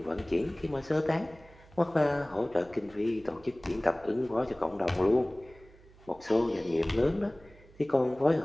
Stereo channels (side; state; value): right; noise; hum, 25 dB below the sound